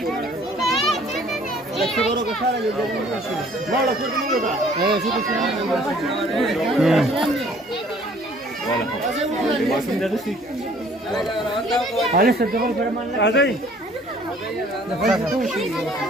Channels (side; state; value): both; normal; correlation 0.56